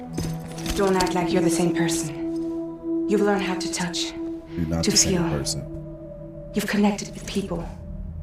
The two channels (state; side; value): identical; both; correlation 1.00